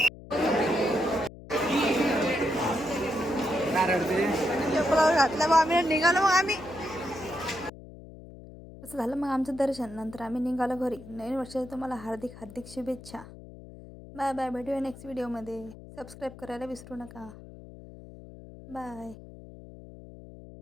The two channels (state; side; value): noise; left; hum, 17 dB below the sound